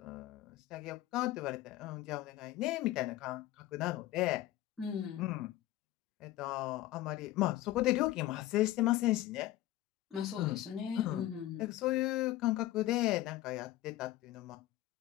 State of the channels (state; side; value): quieter; right; 15.3 dB